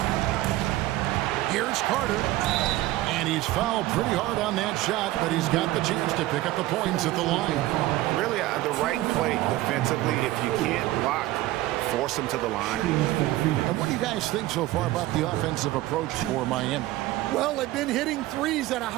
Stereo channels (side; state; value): left; quieter; 16.7 dB